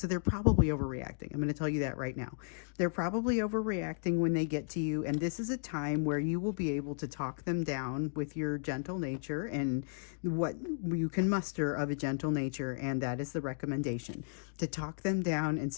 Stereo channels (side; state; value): right; silent; digital silence